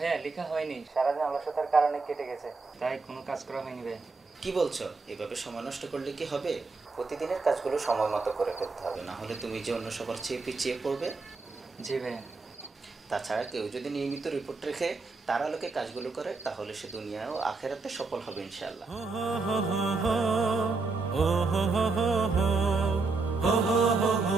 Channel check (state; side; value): quieter; left; 4.0 dB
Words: লেখা হয়নি, সারাদিন অলসতার কারণে কেটে গেছে, তাই কোনো কাজ করা হয়নি ভাইয়া। কি বলছো? এভাবে সময় নষ্ট করলে কি হবে? প্রতিদিনের কাজগুলো সময় মতো করে ফেলতে হবে, না হলে তুমি যে অন্য সবার চেয়ে পিছিয়ে পড়বে। জি ভাইয়া। তাছাড়া কেউ যদি নিয়মিত রিপোর্ট রেখে তার আলোকে কাজগুলো করে তাহলে সে দুনিয়া ও আখেরাতে সফল হবে ইনশাআল্লাহ।